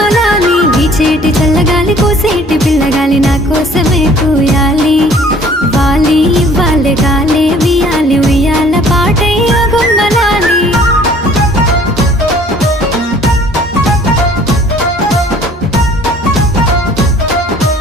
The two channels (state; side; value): normal; both; correlation 0.54